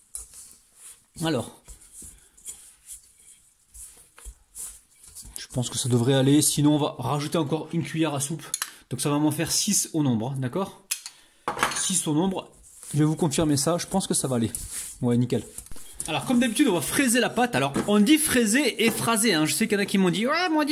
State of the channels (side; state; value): both; identical; correlation 1.00